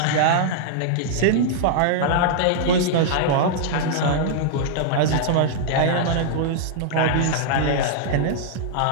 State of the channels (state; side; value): different; both; correlation -0.01